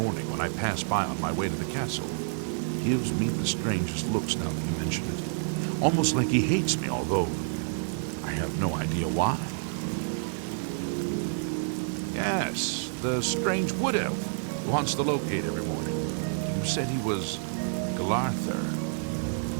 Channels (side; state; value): left; silent; digital silence